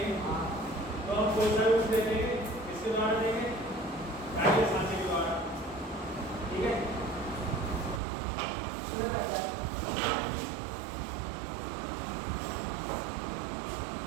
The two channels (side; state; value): left; drops out; at 8.0 s